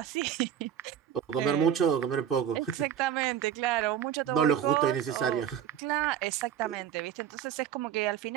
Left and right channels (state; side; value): quieter; left; 9.6 dB